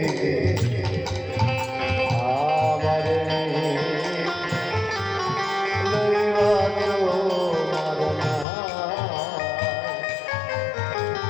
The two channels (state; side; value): drops out; right; at 8.5 s